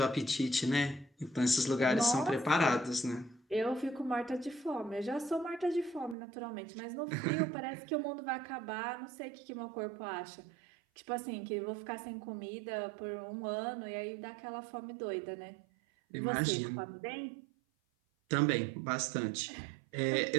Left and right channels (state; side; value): drops out; left; at 6.2 s